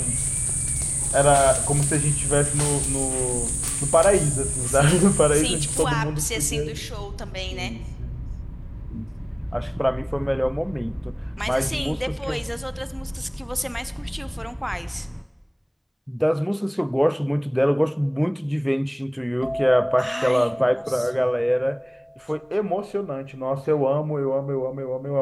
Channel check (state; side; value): identical; both; correlation 1.00